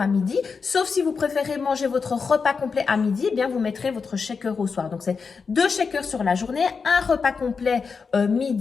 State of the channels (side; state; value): right; quieter; 5.3 dB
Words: à midi. Sauf si vous préférez manger votre repas complet à midi, eh bien, vous mettrez votre shaker au soir. Donc, c'est 2 shakers sur la journée, un repas complet